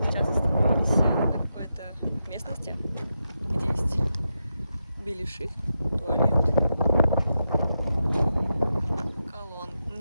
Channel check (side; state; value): both; inverted; correlation -0.87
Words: Сейчас остановились на какой-то местности, где есть беляши, туалет,